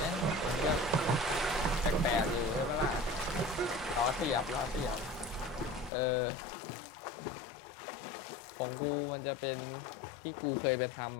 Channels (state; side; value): drops out; right; at 5.9 s